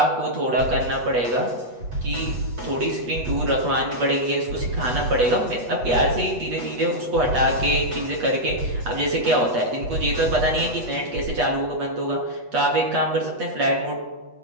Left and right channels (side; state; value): left; late; 8.1 ms